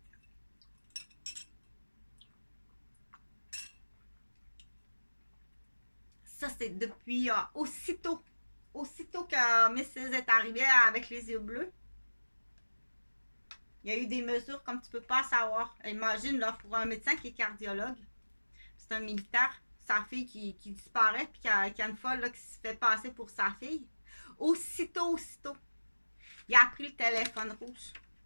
Ça, c'est depuis aussitôt que Mrs. est arrivée avec les yeux bleus. Il y a eu des mesures comme tu peux pas savoir. Imagine, là, pour un médecin qui est cardiologue, c'est un militaire, sa fille qui disparaît, puis qui a une folle là, qui se fait passer pour sa fille. Aussitôt, il a pris le téléphone rouge.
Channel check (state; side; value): inverted; both; correlation -1.00